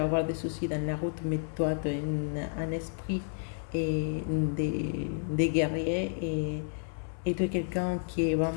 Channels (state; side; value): silent; right; 57 dB below the other